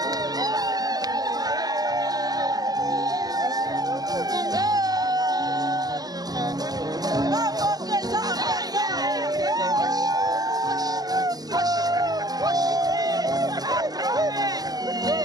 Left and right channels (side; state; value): left; late; 0.19 ms